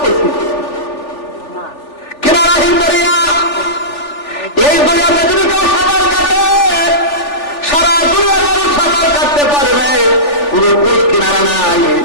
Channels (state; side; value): late; right; 3.4 ms